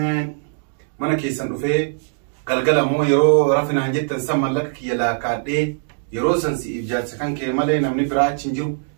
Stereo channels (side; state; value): left; silent; digital silence